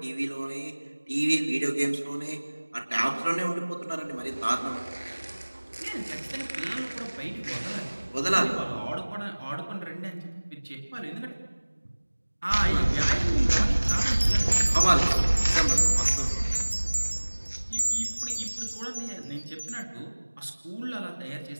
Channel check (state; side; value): inverted; both; correlation -1.00